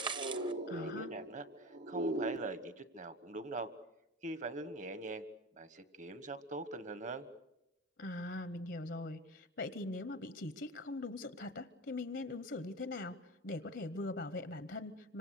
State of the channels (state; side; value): normal; both; correlation 0.30